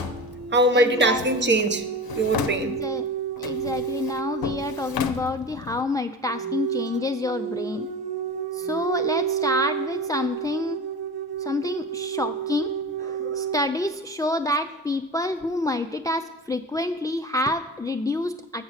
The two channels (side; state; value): both; normal; correlation 0.32